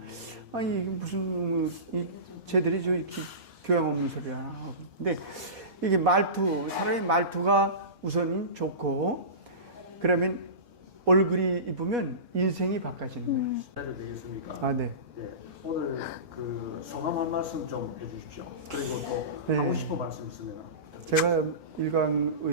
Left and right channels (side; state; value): left; late; 2.5 ms